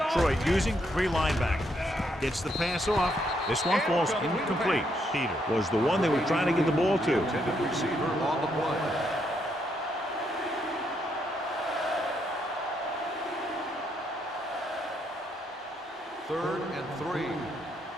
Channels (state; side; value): normal; both; correlation 0.76